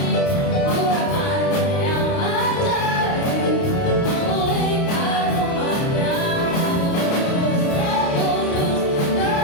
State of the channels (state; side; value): late; right; 29 ms